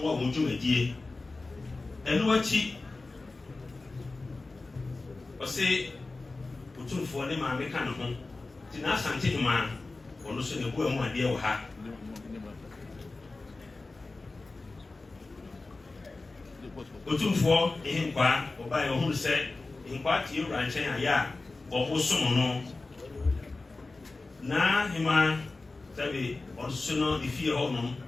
more would you a dear. And what she or say, put on for them, I make an home. Tina Santi man, or no sooner go and one dear or ha. Put on for him, or by your own set, in part you ranch and ya, or who someone. Na hima sabi onsuno the fear honum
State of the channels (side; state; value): right; quieter; 3.4 dB